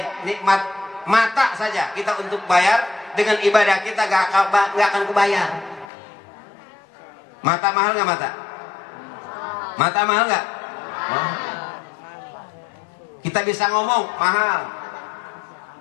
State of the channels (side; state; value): right; drops out; at 5.9 s